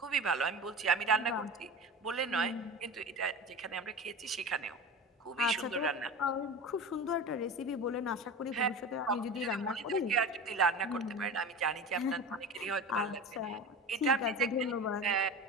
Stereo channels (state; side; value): normal; both; correlation 0.30